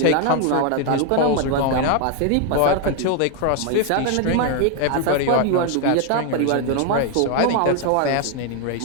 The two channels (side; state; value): both; different; correlation 0.01